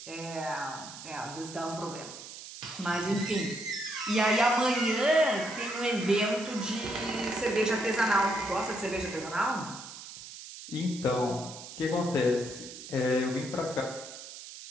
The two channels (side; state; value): right; noise; hiss, 13 dB below the sound